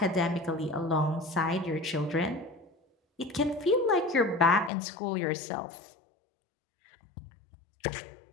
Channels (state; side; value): drops out; right; at 4.7 s